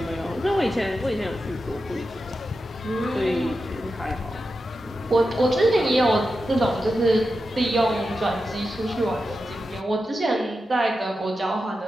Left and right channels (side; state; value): both; normal; correlation 0.90